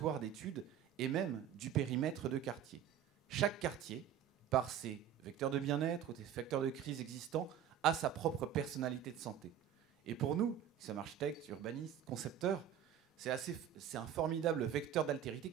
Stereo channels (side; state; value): left; quieter; 9.7 dB